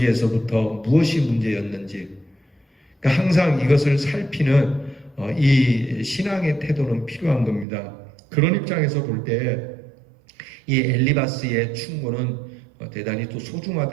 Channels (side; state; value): left; drops out; at 7.7 s